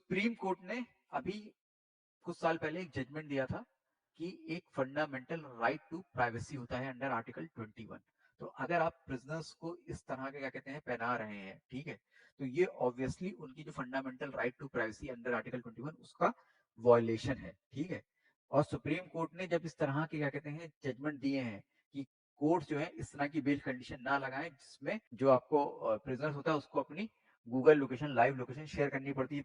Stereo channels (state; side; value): identical; both; correlation 1.00